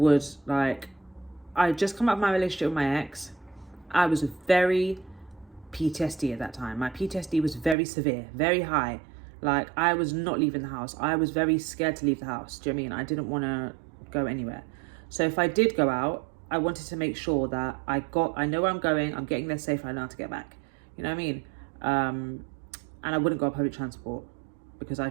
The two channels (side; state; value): left; drops out; at 7.8 s